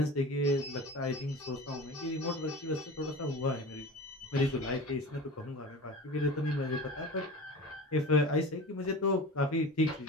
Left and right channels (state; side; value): normal; both; correlation 0.34